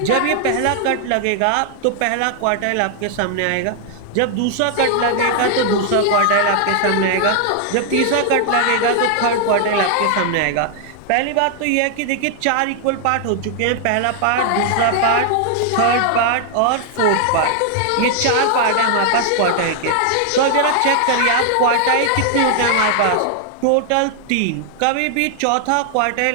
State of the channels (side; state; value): both; different; correlation 0.00